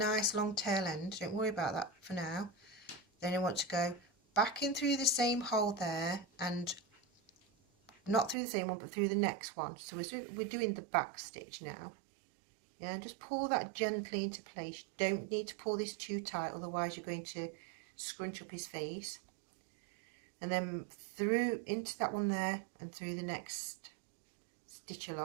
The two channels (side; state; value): left; drops out; at 8.3 s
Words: long tail end, don't worry about that for now. Then I want to go back in through the same hole there, and not through the same one but through the next one. So we're doing the back stitch now. Yeah, and just pull that gently into place. You don't need to pull this too tight, otherwise you're going to scrunch up his face. And then through into that one there, and through the next stitch